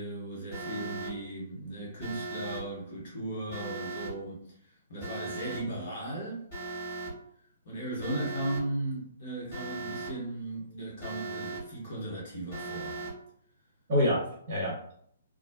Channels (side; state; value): both; inverted; correlation -0.54